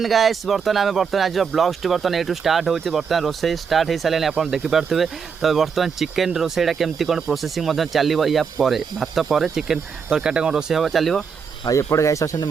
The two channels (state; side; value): quieter; left; 6.2 dB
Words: गाइस बर्तमान आज ब्लॉग्स बर्तमान ये स्टार्ट होती बर्तमान रोसे स्टार्ट हो सारे आप देखिपे। तो बर्तमान चिकेन रोसेटा केमती कौन प्रोसेसिंग चलो या भात पर चिकेन तरकारी कौन रोसे हम चलो। एपटे गाइस अच्छा